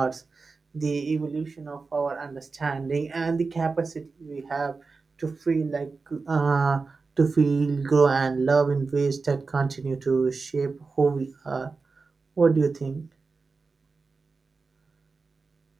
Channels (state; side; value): quieter; left; 4.3 dB